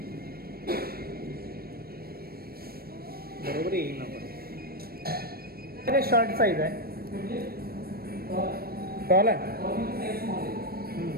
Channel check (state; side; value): late; left; 0.44 ms